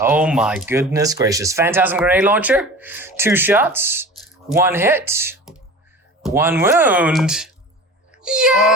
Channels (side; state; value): both; normal; correlation 0.37